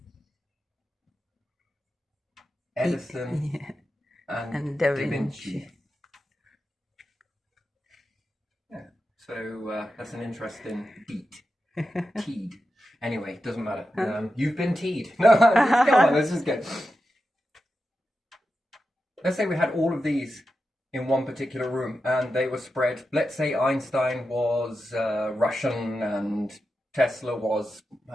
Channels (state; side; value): normal; both; correlation 0.90